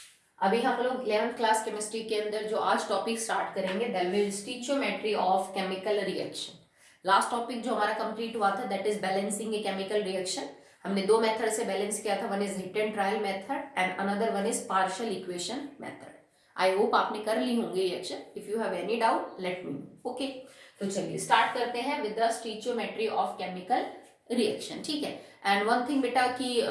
अभी हम लोग 11th क्लास केमिस्ट्री के अंदर जो आज टॉपिक स्टार्ट करेंगे that will stoichiometry of chemical reaction. Last topic जो हमारा कंप्लीट हुआ था that is balancing a chemical reaction. हमने दो मेथड से बैलेंस किया था, one is hit and trial method and another one is partial equation method. I hope आपने कर ली होंगे reaction. If you have any doubt let me know. Okay, तो चलिए स्टार्ट करते हैं with the stoichiometry of chemical reaction. ठीक है। एंड वन थिंग बेटा कि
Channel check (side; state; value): both; identical; correlation 1.00